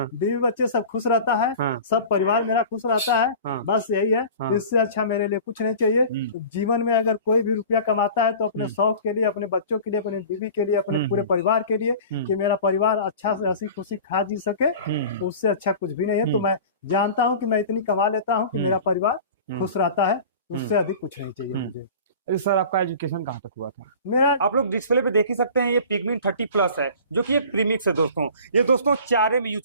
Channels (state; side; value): inverted; both; correlation -0.40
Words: बीवी बच्चे सब खुश रहता है। हाँ, सब परिवार मेरा खुश रहता है। हाँ, बस यही है। हाँ, इससे अच्छा मेरे लिए कुछ नहीं चाहिए। जीवन में अगर कोई भी रुपया कमाता है तो अपने शौक के लिए, अपने बच्चों के लिए, अपने बीवी के लिए, अपने पूरे परिवार के लिए, कि मेरा परिवार अच्छा से हंसी खुशी खा जी सके, उससे अच्छा कुछ भी नहीं है। तो मैं जानता हूँ कि मैं इतनी कमा लेता हूँ कि मेरा परिवार खुश रहता है, उससे अधिक कुछ नहीं चाहिए मुझे। अरे सर आपका एजुकेशन कहाँ तक हुआ था? मेरा, आप लोग डिस्प्ले पे देख ही सकते हैं, ये पिगमिन 30+ है, जो कि एक प्रीमिक्स है दोस्तों। ये दोस्तों चारे में